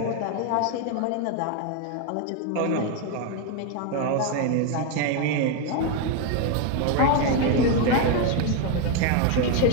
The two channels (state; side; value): different; both; correlation 0.01